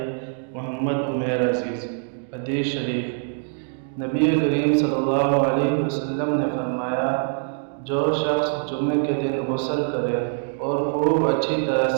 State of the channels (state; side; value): silent; left; digital silence